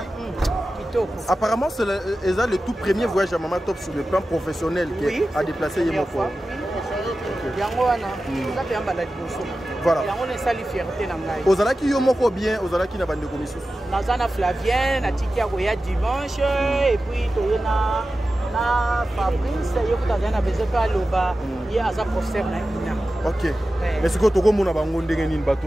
apparemment c'est le tout premier voyage à Maman Top sur le plan professionnel qui a déplacé Yemoko. Voilà. Ozalaki yo moko bien, ozalaki na bande commission. Nazana Flavien, na tikia koya dimanche et puis toyena na Fabrice yo kutazana besoin pa loba ya aza professeur na ina. OK. Mais ce que toko mona bango ndenge nini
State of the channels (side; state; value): both; normal; correlation 0.94